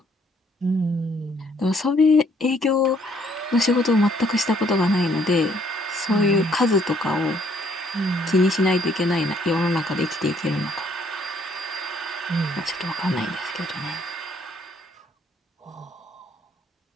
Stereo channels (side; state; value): both; normal; correlation 0.66